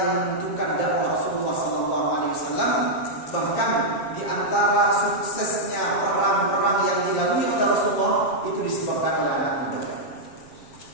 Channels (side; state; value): right; late; 7.3 ms